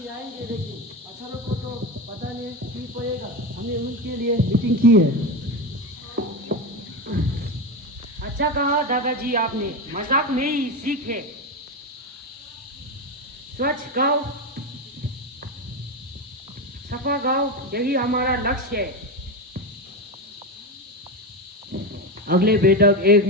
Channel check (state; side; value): normal; both; correlation 0.17